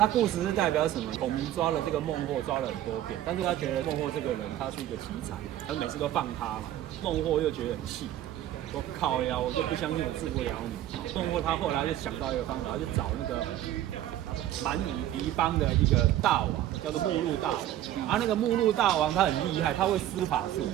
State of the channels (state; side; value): quieter; left; 12.8 dB